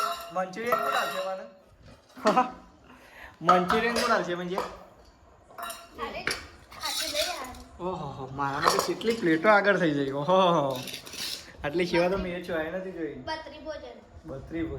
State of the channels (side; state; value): both; identical; correlation 1.00